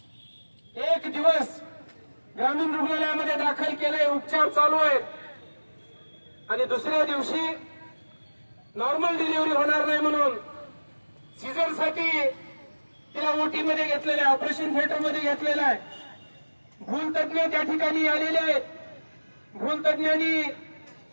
1 दिवस ग्रामीण रुग्णालयामध्ये दाखल केलंय, उपचार चालू आहेत आणि दुसऱ्या दिवशी नॉर्मल डिलिव्हरी होणार नाही म्हणून सीझरसाठी तिला ओटी मध्ये घेतलेलं आहे, ऑपरेशन थिएटर मध्ये घेतलेलं आहे. भूलतज्ञ त्या ठिकाणी आलेले आहेत. भूलतज्ञांनी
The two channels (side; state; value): both; inverted; correlation -1.00